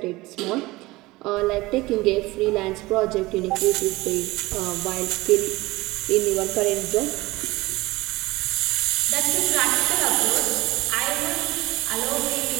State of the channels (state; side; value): quieter; left; 20.4 dB